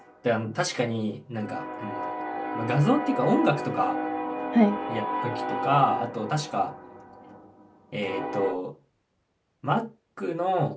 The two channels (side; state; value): both; identical; correlation 1.00